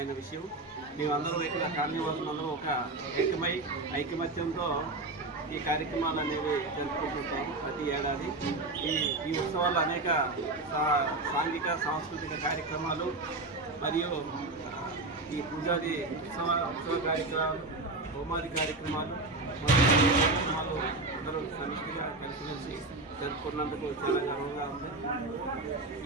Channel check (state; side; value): quieter; left; 3.1 dB